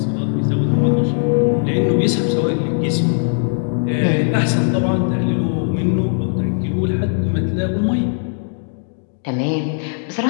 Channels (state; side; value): silent; right; 62 dB below the other